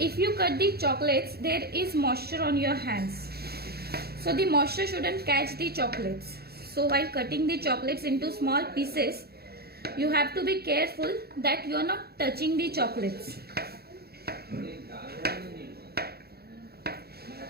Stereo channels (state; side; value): late; left; 0.46 ms